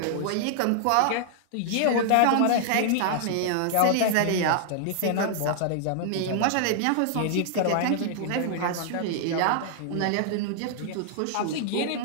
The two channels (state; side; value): different; both; correlation -0.01